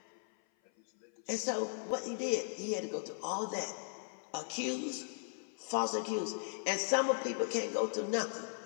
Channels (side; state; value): right; silent; 53 dB below the other